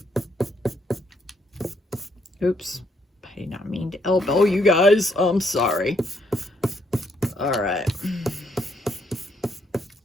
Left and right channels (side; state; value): both; normal; correlation 0.72